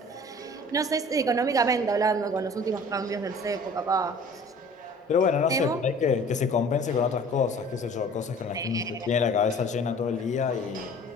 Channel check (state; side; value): normal; both; correlation 0.47